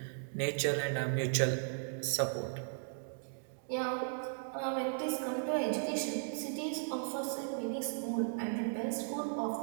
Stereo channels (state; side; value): silent; left; digital silence